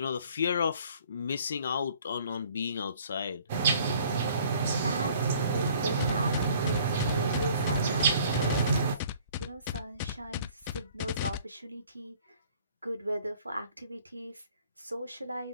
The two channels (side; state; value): both; inverted; correlation -0.55